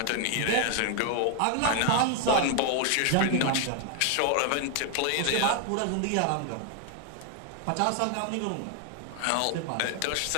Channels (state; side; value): different; both; correlation 0.00